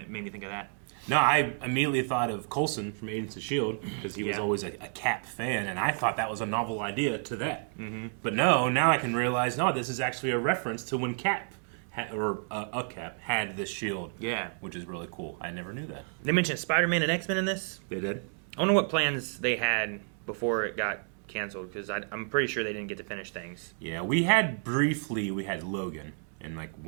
made me think of that. No, I immediately thought of Coulson from Agents of S.H.I.E.L.D. because he was always a Cap fan, and I thought that was a novel idea to that. Mm-hmm. But no, now I can realize, no, this is actually a reference to when Cap, a Cap, had this shield. Yeah. Which is really cool. I never knew that. They mentioned Spider-Man and X-Men in this. They did? I wonder what plans they had before it got canceled, because I'm pretty sure they didn't get to finish things. Yeah, we had Logan in like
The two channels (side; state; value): left; silent; 57 dB below the other